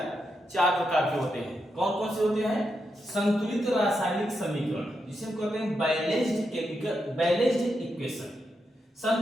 चार प्रकार के होते हैं। कौन कौन से होते हैं? संतुलित रासायनिक समीकरण, जिसे हम कहते हैं बैलेंस्ड केमिकल बैलेंस्ड इक्वेशन।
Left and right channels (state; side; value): normal; both; correlation 0.84